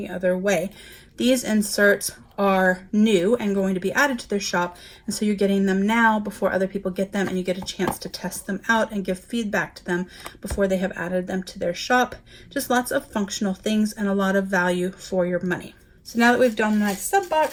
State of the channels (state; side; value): identical; both; correlation 1.00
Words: other way. These inserts are new and going to be added to their shop, and so you're getting them now before other people get them, and you get a chance to test them out and give feedback to them before they have added them to their shop. Just lots of functional things and a lot of value for your money. So now that we've done my sub